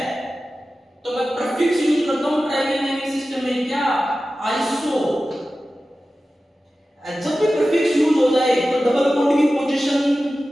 तो मैं प्रीफिक्स यूज करता हूं ट्राइबल नेमिंग सिस्टम में, क्या, आइसो। जब भी प्रीफिक्स यूज हो जाए तो डबल बॉन्ड की पोजीशन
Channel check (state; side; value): normal; both; correlation 0.95